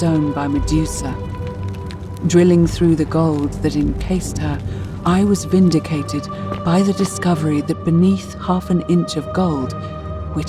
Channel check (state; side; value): identical; both; correlation 1.00